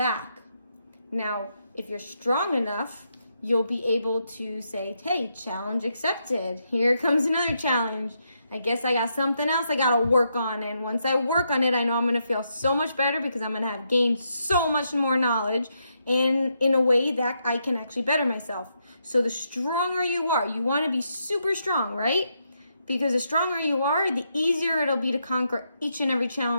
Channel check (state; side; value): inverted; both; correlation -0.80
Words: Now, if you're strong enough, you'll be able to say, hey, challenge accepted. Here comes another challenge. I guess I got something else I got to work on. And once I work on it, I know I'm going to feel so much better, because I'm going to have gained so much more knowledge and in a way that I can actually better myself. So the stronger you are, you want to be super strong, right? Because the stronger you are, the easier it'll be to conquer each and every